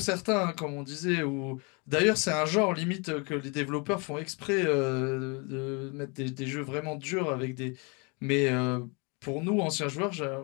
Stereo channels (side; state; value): right; quieter; 31.7 dB